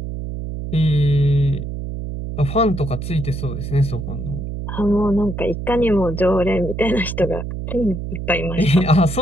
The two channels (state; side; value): noise; right; hum, 6 dB below the sound